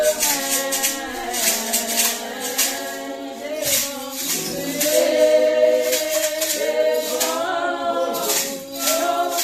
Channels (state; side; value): identical; both; correlation 1.00